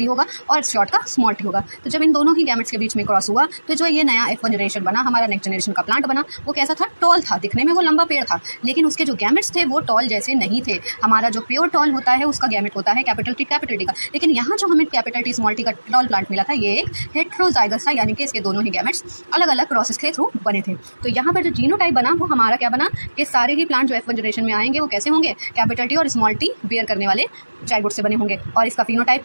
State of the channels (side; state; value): both; inverted; correlation -1.00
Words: होगा और शॉर्ट का स्मॉल टी होगा। तो जब इन दोनों ही गैमेट्स के बीच में क्रॉस हुआ तो जो ये नया F1 जनरेशन बना, हमारा नेक्स्ट जनरेशन का प्लांट बना, वो कैसा था, टॉल था। दिखने में वो लंबा पेड़ था, लेकिन उसके जो गैमेट्स थे वो टॉल जैसे नहीं थे। हमारा जो प्योर टॉल होता है उसका गैमेट होता है कैपिटल टी का, लेकिन यहाँ जो हमें कैपिटल टी स्मॉल टी का टॉल प्लांट मिला था ये एक हेट्रोजाइगस था, यानी कि इसके दोनों ही गैमेट्स अलग अलग प्रोसेस के थ्रू बने थे। तो यहाँ पर जो जीनोटाइप बना वो हमारा क्या बना कि सारे ही प्लांट जो F1 जनरेशन में आएंगे वो कैसे होंगे, कैपिटल टी और स्मॉल टी बेयर करने वाले जाइगोट से बने होंगे। और इसका फिनोटाइप